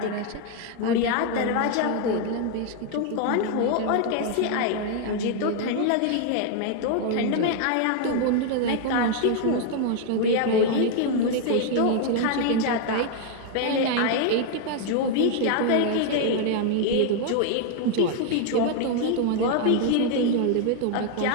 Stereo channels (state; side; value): different; both; correlation 0.00